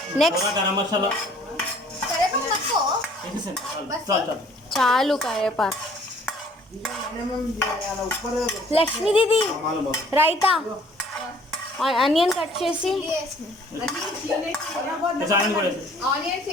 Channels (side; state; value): both; normal; correlation 0.57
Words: నెక్స్ట్ గరం మసాలా కరివేపాకు తక్కువ. వేసేసాను. చాలు చాలు. చాలు కరివేపాకు. లక్ష్మీ దీది రైతా ఆనియన్ కట్ చేసి ఆనియన్ కూడా వేసేసి. ఆనియన్స్